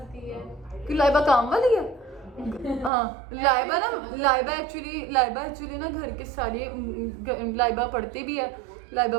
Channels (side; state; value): left; drops out; at 2.9 s